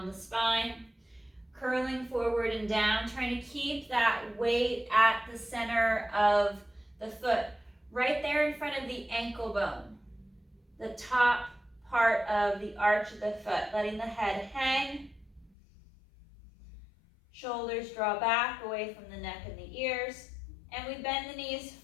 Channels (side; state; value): right; drops out; at 15.5 s